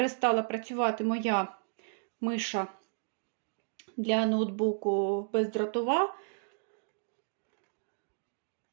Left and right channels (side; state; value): left; silent; digital silence